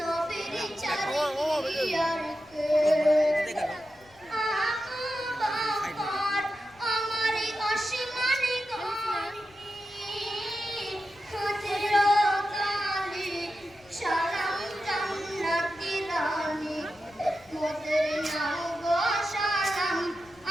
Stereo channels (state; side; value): noise; left; rumble, 28 dB below the sound